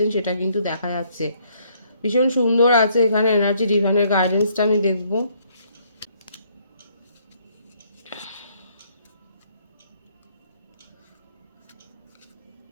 সেটা কিন্তু দেখা যাচ্ছে। ভীষণ সুন্দর আছে এখানে এনার্জি। ডিভাইনের গাইডেন্সটা আমি দেখব।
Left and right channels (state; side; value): inverted; both; correlation -0.67